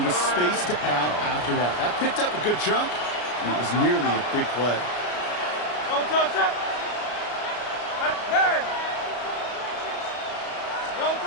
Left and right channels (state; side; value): late; right; 33 ms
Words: with space to add after that. That picked up a good chunk, and it was nearly a big play.